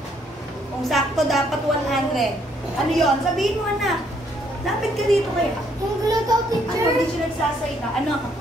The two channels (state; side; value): normal; both; correlation 0.69